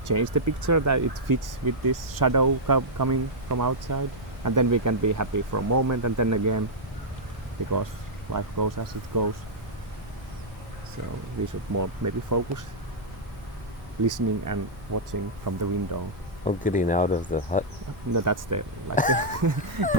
change the picture that it fits with this shadow coming from outside, and then we can be happy for a moment, and then again, because life goes as it goes. So we should more maybe focus listening and watching from the window. Oh, getting out of the hut. No, that's the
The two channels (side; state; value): both; normal; correlation -0.08